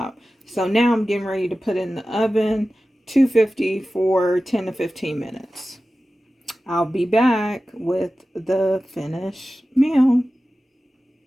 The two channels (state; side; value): normal; both; correlation 0.95